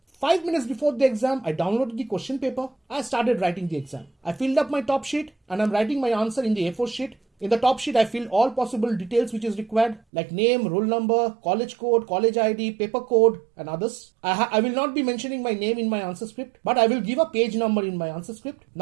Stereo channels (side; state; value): left; drops out; at 10.0 s